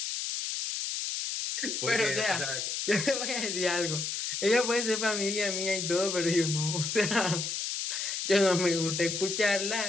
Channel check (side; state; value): left; noise; hiss, 3 dB below the sound